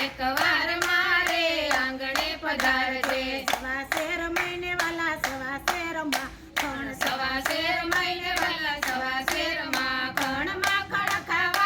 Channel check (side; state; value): both; identical; correlation 1.00